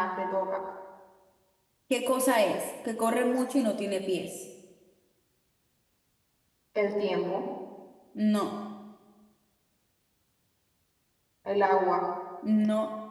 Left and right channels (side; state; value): both; identical; correlation 1.00